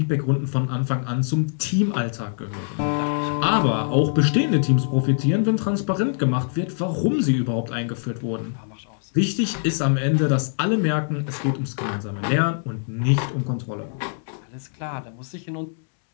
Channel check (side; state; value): right; silent; digital silence